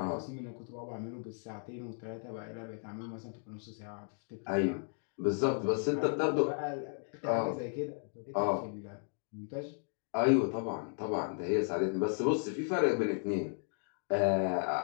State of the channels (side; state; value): right; silent; 54 dB below the other